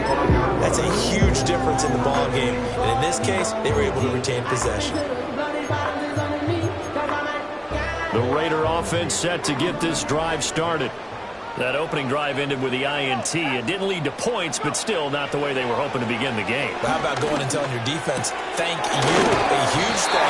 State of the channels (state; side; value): identical; both; correlation 1.00